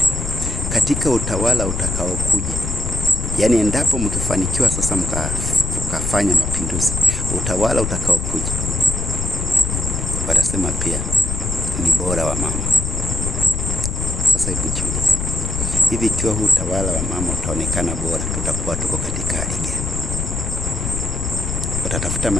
Katika utawala utakaokuja, yani endapo mkifanikiwa sasa tukafanya mapinduzi, utawala utakaokuja watasema pia ni bora wa mama. Sasa hebu jiulize, hivi ikiwa huu utawala wa mama utaonekana bora, tutakuwa tuko katika hali gani? Watatafuta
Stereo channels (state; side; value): noise; left; rumble, 2 dB below the sound